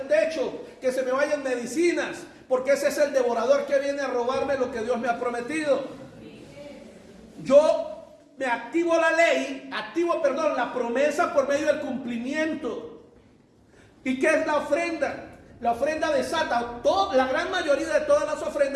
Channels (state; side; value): identical; both; correlation 1.00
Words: techo, que se me vayan medicinas, porque ese es el devorador que viene a robarme lo que Dios me ha prometido. Yo me activo la ley, la promesa por medio del cumplimiento. ¿Y qué es la ofrenda? La ofrenda desata, la gran mayoría de todas las